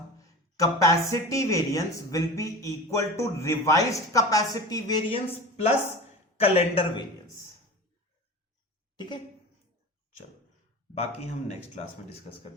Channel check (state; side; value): normal; both; correlation 0.32